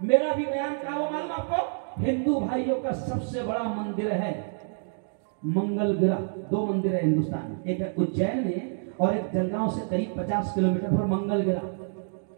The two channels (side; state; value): left; silent; digital silence